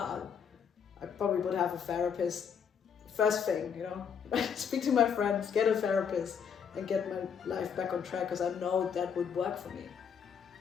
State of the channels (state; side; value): quieter; right; 7.2 dB